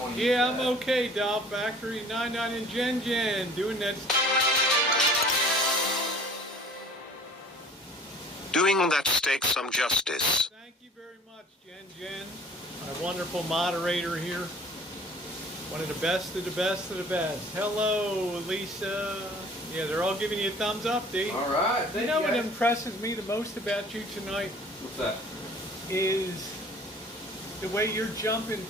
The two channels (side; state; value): both; normal; correlation 0.49